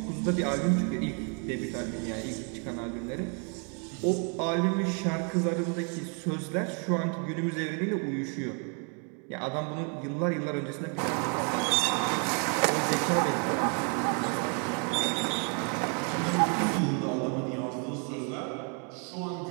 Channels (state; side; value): quieter; left; 39.3 dB